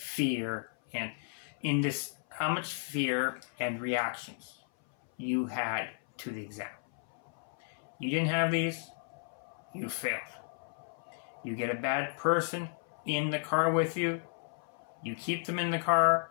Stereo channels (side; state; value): right; silent; 55 dB below the other